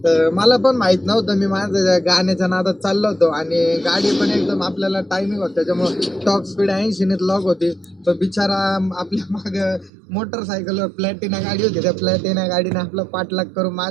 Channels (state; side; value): drops out; left; at 9.9 s